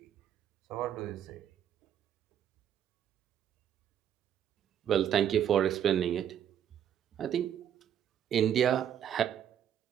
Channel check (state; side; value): quieter; left; 9.7 dB